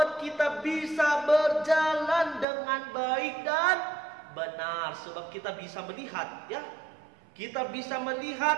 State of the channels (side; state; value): left; drops out; at 2.5 s